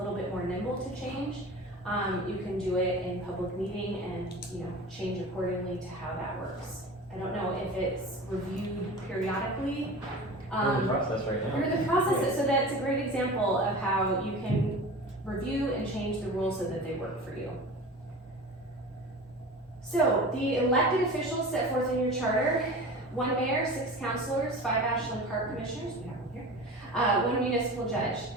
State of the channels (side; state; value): both; normal; correlation 0.35